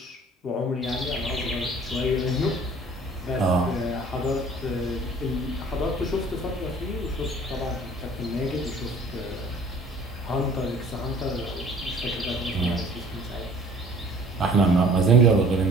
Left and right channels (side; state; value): both; normal; correlation 0.51